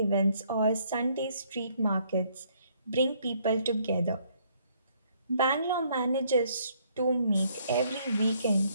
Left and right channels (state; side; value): inverted; both; correlation -0.67